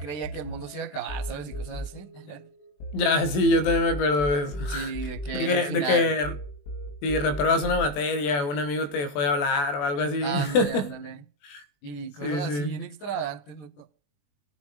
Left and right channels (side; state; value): right; late; 20 ms